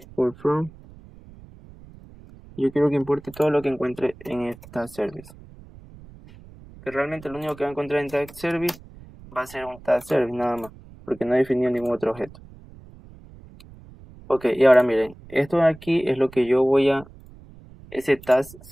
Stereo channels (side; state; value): right; noise; rumble, 21 dB below the sound